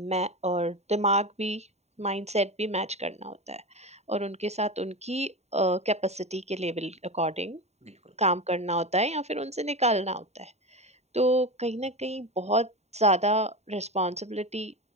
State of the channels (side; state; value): left; late; 0.32 ms